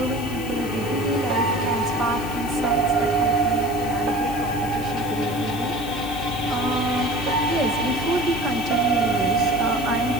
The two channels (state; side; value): noise; left; hiss, 15 dB below the sound